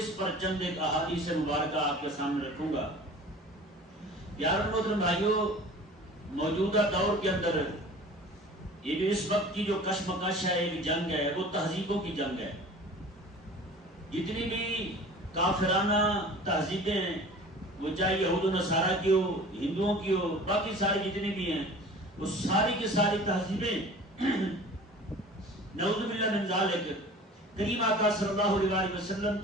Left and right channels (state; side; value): normal; both; correlation 0.43